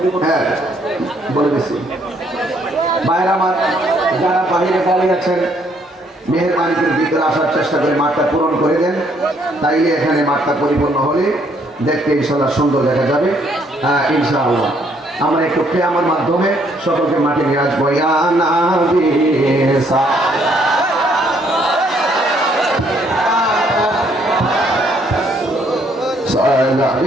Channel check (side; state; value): both; normal; correlation 0.68